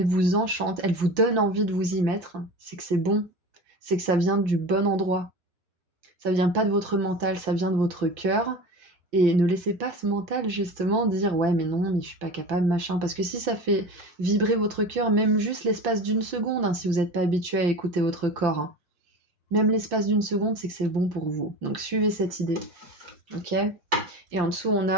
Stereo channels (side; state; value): left; late; 5.8 ms